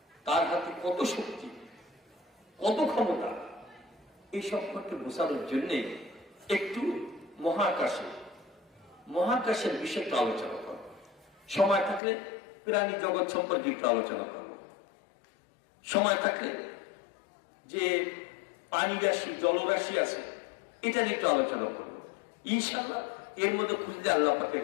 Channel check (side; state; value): right; drops out; at 12.0 s